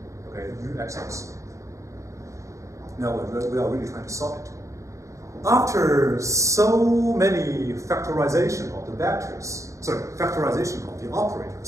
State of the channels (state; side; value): late; left; 0.15 ms